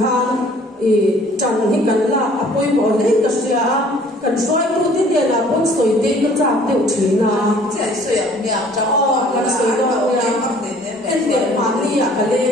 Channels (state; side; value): normal; both; correlation 0.55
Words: chan hi kan la apoi bo le ka sia kan soi tu ti de la bon soi te ka cha te chi na chai soi ang nya cha kan soi do ya en de ma ni ya ka le